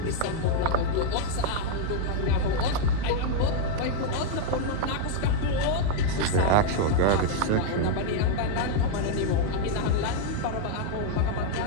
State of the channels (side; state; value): both; different; correlation 0.00